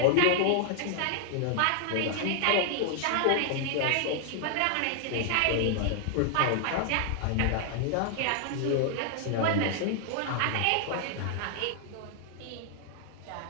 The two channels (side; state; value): both; different; correlation 0.00